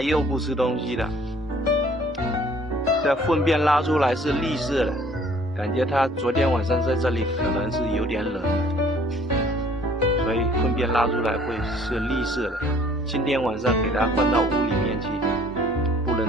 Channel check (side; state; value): both; normal; correlation 0.56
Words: 又不吃东西了，这粪便拉出来是绿色的，感觉它昨天晚上在这里可能是有点冷，所以粪便拉出来会是绿色的。今天晚上给它放到屋里面去，不